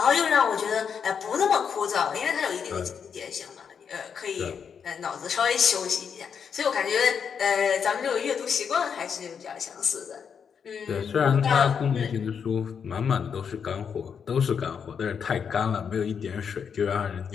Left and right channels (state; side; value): quieter; right; 6.9 dB